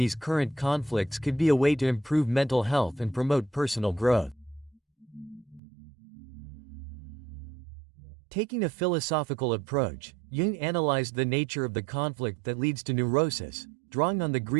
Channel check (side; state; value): left; drops out; at 5.6 s